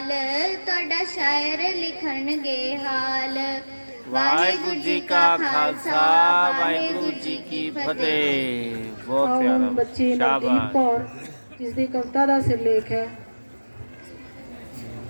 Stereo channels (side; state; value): both; inverted; correlation -1.00